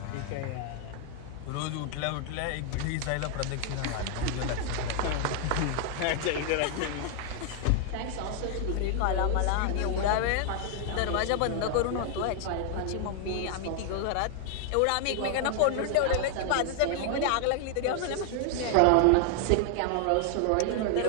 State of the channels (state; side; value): different; both; correlation 0.00